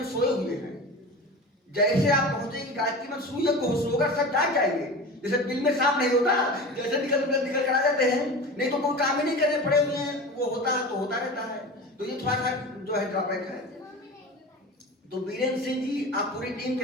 सोए हुए हैं। जैसे आप पहुंचेंगे गायत्री मंत्र शुरू यज्ञ होगा सब जाग जाएंगे। जैसे बिल में सांप नहीं होता, जैसे निकल कर आ जाते हैं, नहीं तो कोई काम ही नहीं करने पड़े हुए हैं, वो होता है तो होता रहता है। तो ये थोड़ा सा जो है ड्रॉबैक है। तो बीरेंद्र सिंह जी आप पूरी टीम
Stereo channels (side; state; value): both; normal; correlation 0.32